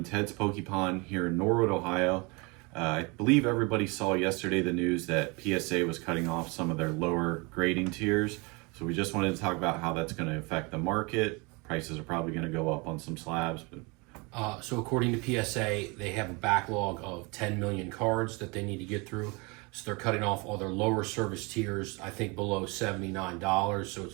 Ted's Pokepon here in Norwood, Ohio. I believe everybody saw yesterday the news that PSA was cutting off some of their lower grading tiers. So we just wanted to talk about how that's going to affect the market. Prices are probably going to go up on some slabs. So according to PSA, they have a backlog of 10 million cards that they need to get through. So they're cutting off all their lower service tiers, I think below $79. So it's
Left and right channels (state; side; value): quieter; left; 28.3 dB